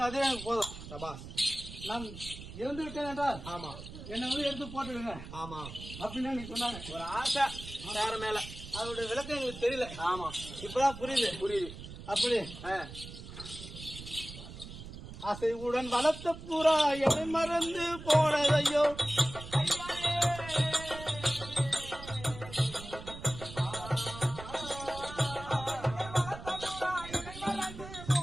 அதே எனக்கு போதும். நான் இறந்து விட்டேன் என்றால் என்னை வந்து எடுத்து போட்டுடுங்க அப்படின்னு நீங்க சொன்னாங்க. ஒரு ஆசை வேற மேல, அதோட விளக்கம் எங்களுக்கு தெரியல. இப்பதான் புரியுது. அப்படி அசைவுடன் வளர்த்த புறா என்னை மறந்து போனதையோ.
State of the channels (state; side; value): noise; right; rumble, 12 dB below the sound